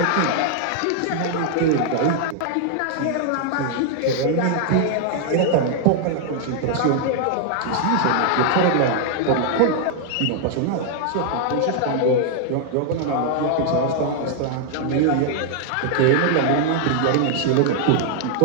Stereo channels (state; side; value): different; both; correlation 0.00